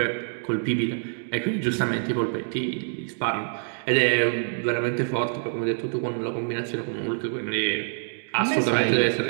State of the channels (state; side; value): silent; left; digital silence